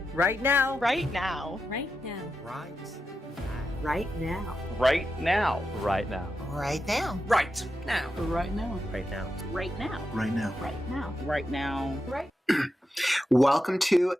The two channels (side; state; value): both; normal; correlation 0.88